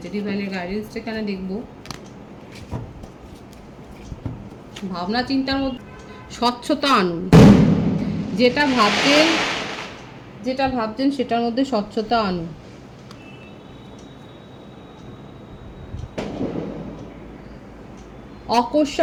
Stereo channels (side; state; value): both; identical; correlation 1.00